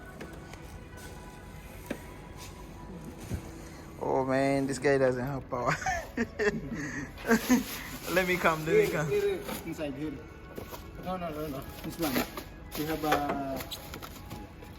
Oh man, this guy doesn't have power. Let me come. Here, inside here. No. This one. You have a.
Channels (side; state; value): both; identical; correlation 1.00